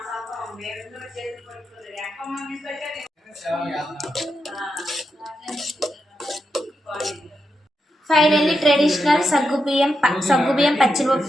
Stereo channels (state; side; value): normal; both; correlation 0.86